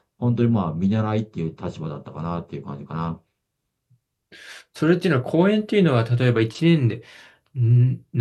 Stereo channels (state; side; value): identical; both; correlation 1.00